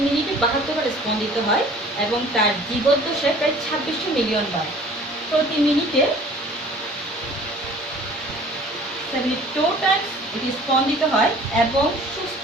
মিনিটে 72 বার স্পন্দিত হয়, এবং তার জীবদ্দশায় প্রায় 2600 মিলিয়ন বার প্রতি মিনিটে 72 টাইমস এটি স্পন্দিত হয়। এবং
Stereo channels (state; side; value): normal; both; correlation 0.49